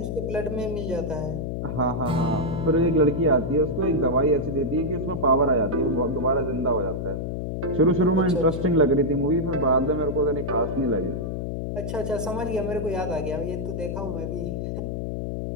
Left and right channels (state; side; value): noise; left; hum, 3 dB below the sound